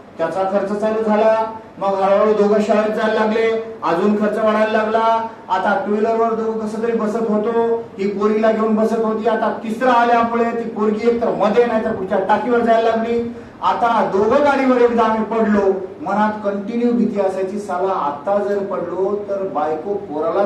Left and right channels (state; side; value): identical; both; correlation 1.00